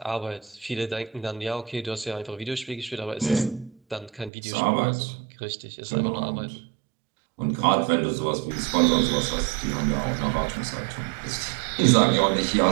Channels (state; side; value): drops out; left; at 4.3 s